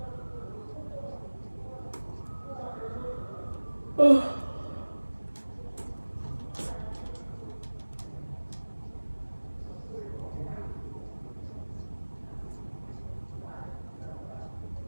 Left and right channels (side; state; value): both; inverted; correlation -1.00